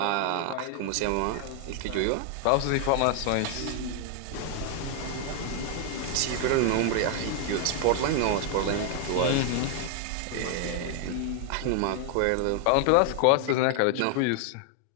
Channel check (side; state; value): both; different; correlation 0.00